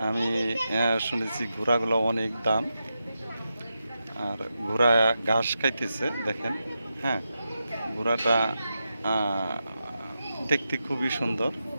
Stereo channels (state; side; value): inverted; both; correlation -0.88